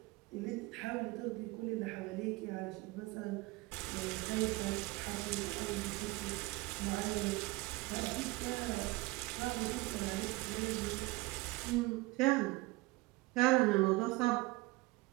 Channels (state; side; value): quieter; left; 22.5 dB